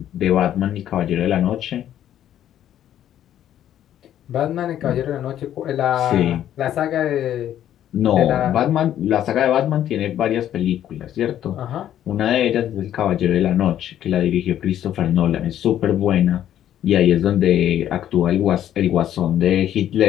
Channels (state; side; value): quieter; right; 11.2 dB